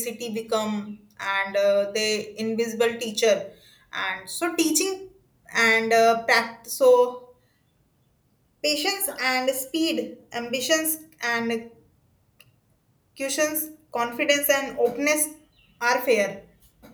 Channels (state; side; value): identical; both; correlation 1.00